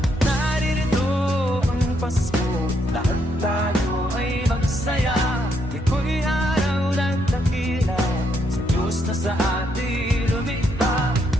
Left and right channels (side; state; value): both; normal; correlation 0.76